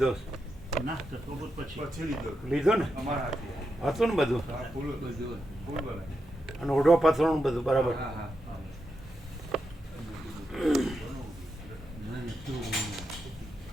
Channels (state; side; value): normal; both; correlation 0.86